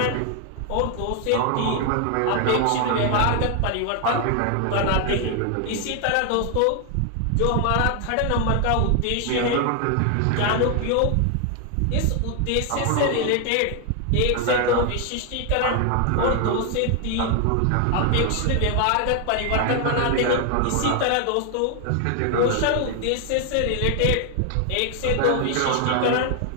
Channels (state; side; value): different; both; correlation 0.00